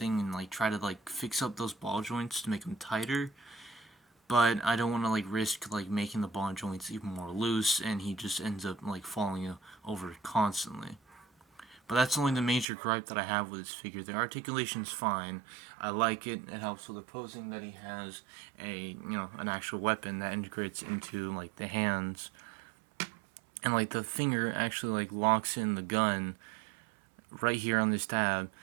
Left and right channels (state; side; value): drops out; left; at 12.7 s